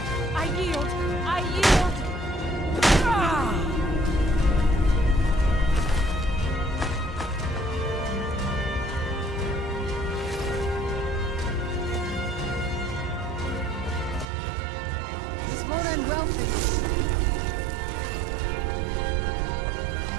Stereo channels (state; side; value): drops out; left; at 14.2 s